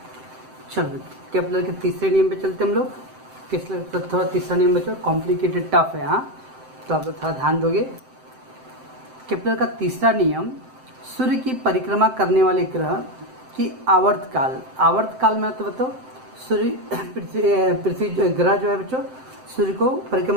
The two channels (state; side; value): late; left; 7.7 ms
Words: चलो केपलर के तीसरे नियम पे चलते हम लोग। केपलर थोड़ा तीसरा नियम बच्चों कॉम्प्लिकेटेड टफ है, हाँ, तो आप थोड़ा ध्यान दोगे। केपलर का तीसरा नियम, सूर्य की परिक्रमा करने वाले ग्रह की आवर्तकाल में, तो बताओ सूर्य पृथ्वी ग्रह जो है बच्चों, सूर्य को